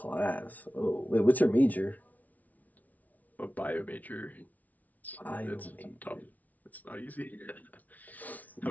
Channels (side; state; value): right; late; 0.074 ms